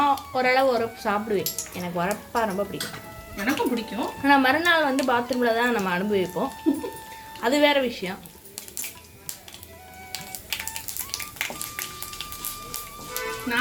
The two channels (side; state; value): both; identical; correlation 1.00